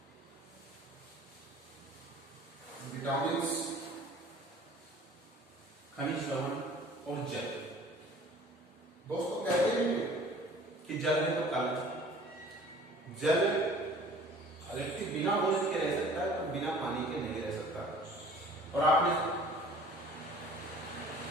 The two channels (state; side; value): normal; both; correlation 0.49